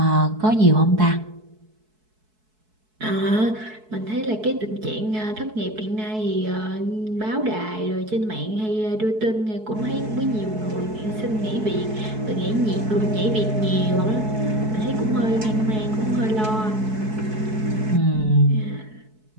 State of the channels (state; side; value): late; left; 4.6 ms